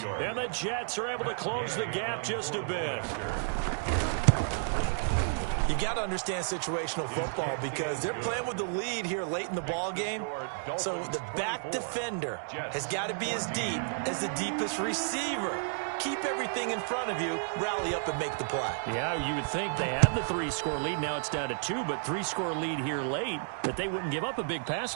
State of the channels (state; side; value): silent; left; digital silence